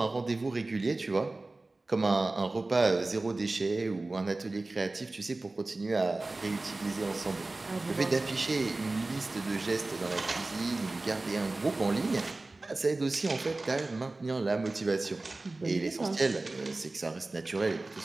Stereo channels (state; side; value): quieter; left; 3.1 dB